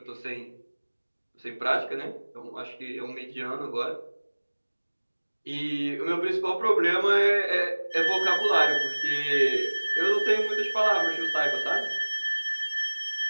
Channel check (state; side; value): inverted; both; correlation -1.00